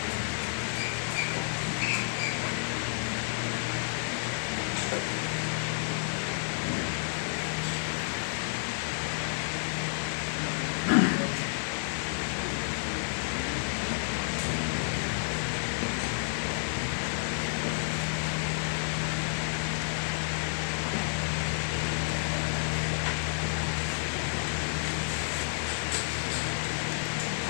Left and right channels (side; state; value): right; silent; digital silence